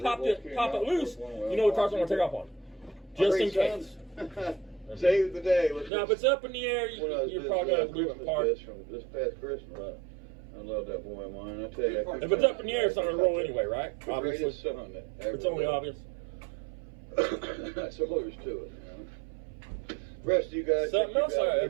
it loose. You know the car's not going to take off on you. Just in case. Save the day. Now, if it's up in the air, you're probably going to have to leave it apart. From this past Christmas. I love that boy of mine. I tell you. If it's up in the air, it's not going to roll anyway, right? Obviously. It's only obvious. That's all there's to it. You know? Rest of you guys. Something else I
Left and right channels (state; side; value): drops out; left; at 5.9 s